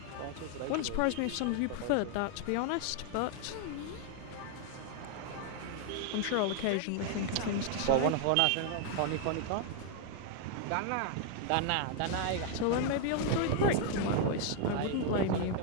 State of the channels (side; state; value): both; different; correlation 0.00